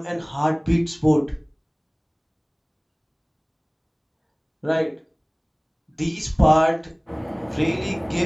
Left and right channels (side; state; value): both; identical; correlation 1.00